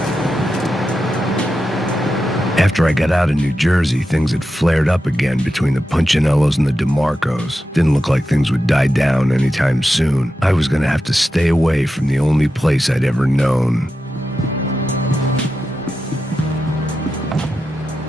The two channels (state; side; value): normal; both; correlation 0.90